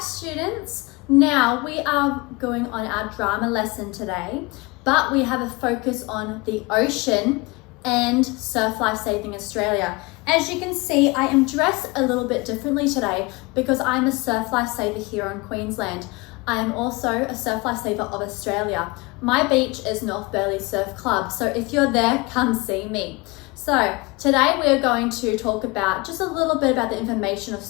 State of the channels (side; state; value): right; quieter; 24.8 dB